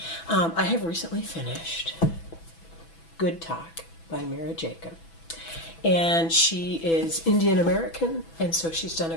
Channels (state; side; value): late; right; 6.0 ms